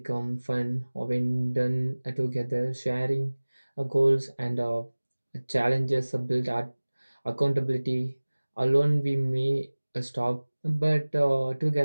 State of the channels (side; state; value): both; inverted; correlation -1.00